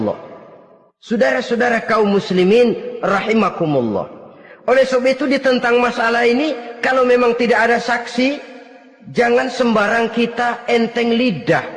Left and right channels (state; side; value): identical; both; correlation 1.00